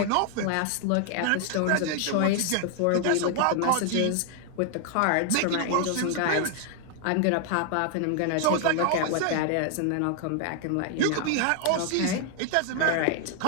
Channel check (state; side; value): different; both; correlation 0.00